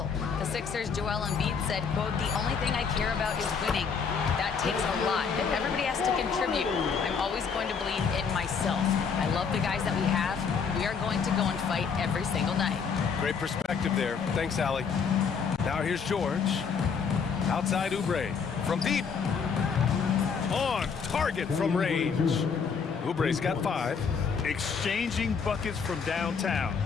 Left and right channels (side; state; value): right; quieter; 6.0 dB